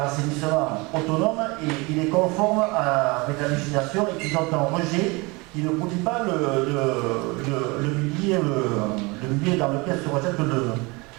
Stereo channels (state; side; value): quieter; left; 26.0 dB